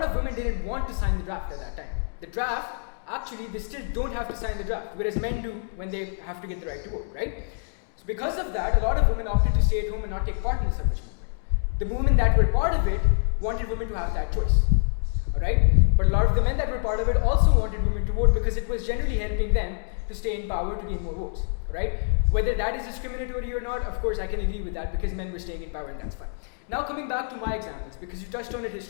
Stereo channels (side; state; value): right; silent; digital silence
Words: of women didn't want to sign the draft at that time. The draft, actually, they still don't have to sign the draft, whereas men do when they have to get the right to vote, right? So because of that, a lot of women opted to stay at home and not take part in the suffrage movement. The women that were part of it wanted women to have that choice, all right? But a lot of the men that were part of it also wanted women to vote because it was generally helping them to stay in power to gain more votes, right? Whether that is discriminatory or not, of course, I can agree with that because men were staying in power and that's fine. Now coming back to my examples, because you touched on it